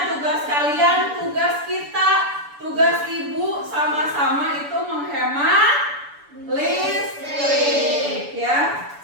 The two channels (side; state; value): left; late; 7.0 ms